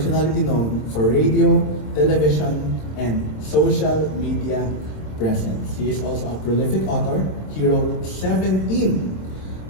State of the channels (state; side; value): late; right; 26 ms